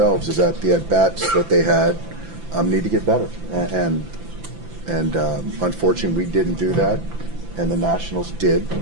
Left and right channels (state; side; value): late; left; 5.9 ms